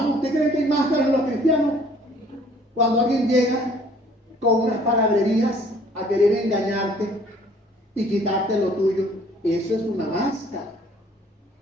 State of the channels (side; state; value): both; normal; correlation 0.57